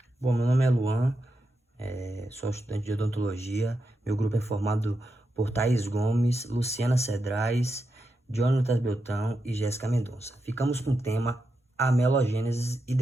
Bom, meu nome é Luan, sou estudante de odontologia. Meu grupo é formado por Thaís Gomes, Luciana Cedrais, Jonatas Beltrão e Jéssica Mendonça. Ficamos com o tema amelogênese e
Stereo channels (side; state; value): both; normal; correlation 0.86